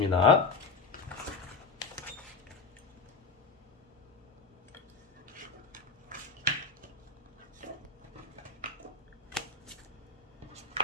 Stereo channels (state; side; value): quieter; right; 4.5 dB